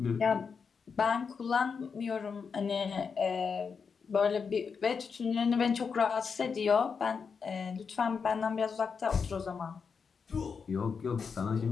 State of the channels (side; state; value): right; quieter; 5.8 dB